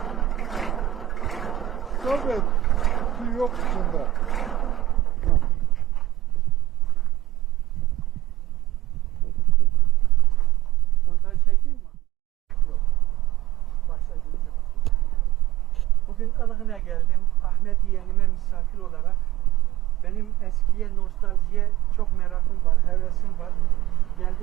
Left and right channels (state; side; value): quieter; left; 15.0 dB